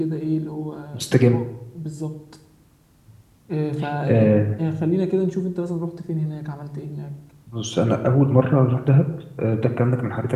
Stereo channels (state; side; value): identical; both; correlation 1.00